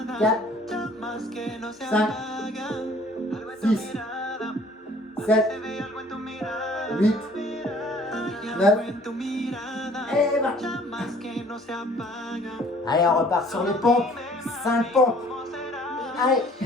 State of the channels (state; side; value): normal; both; correlation 0.55